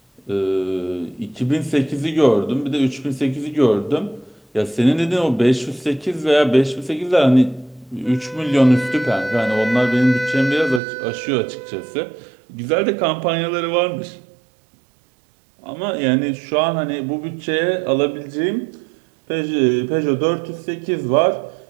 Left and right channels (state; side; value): drops out; left; at 10.8 s